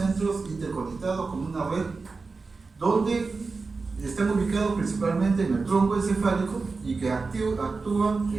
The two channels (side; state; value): left; quieter; 4.2 dB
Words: interconectados con una red, donde están ubicados principalmente en el tronco encefálico y que actúan